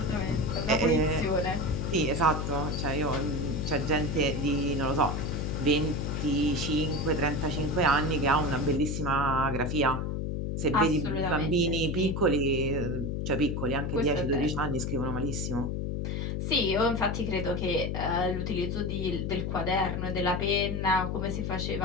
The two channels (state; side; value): noise; left; hum, 1 dB below the sound